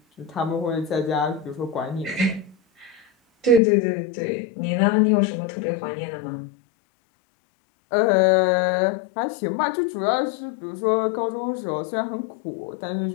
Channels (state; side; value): drops out; right; at 3.6 s